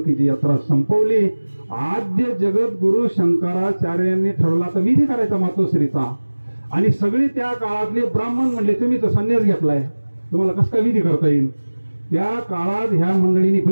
यात्रा संपवली. आद्य जगत गुरु शंकराचार्यांनी ठरवला तर विधी करायचा मातोश्रीचा. आणि सगळे त्या काळातले ब्राह्मण म्हणले, तुम्ही तर संन्यास घेतलाय, तुम्हाला कसं काय विधी करता येईल? त्या काळात ह्या मंडळींनी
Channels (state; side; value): inverted; both; correlation -1.00